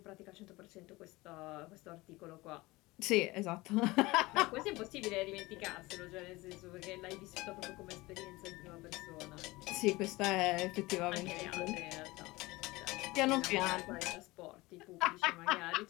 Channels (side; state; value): right; quieter; 21.1 dB